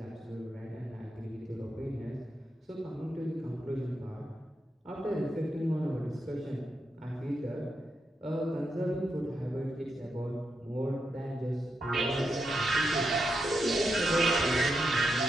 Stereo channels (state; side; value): normal; both; correlation 0.85